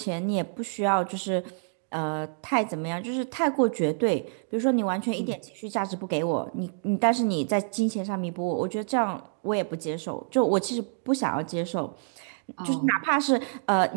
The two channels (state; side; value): silent; left; digital silence